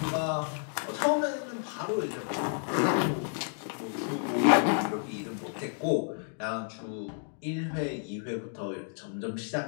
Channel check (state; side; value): silent; right; digital silence